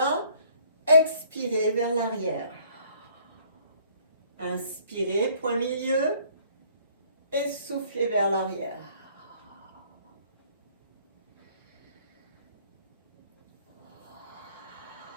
Expirez vers l'arrière. Inspirez, point milieu, et soufflez vers l'arrière.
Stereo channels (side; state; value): both; inverted; correlation -0.59